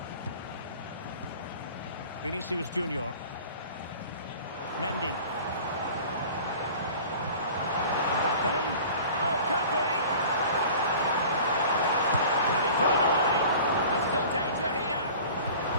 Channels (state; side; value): inverted; both; correlation -0.43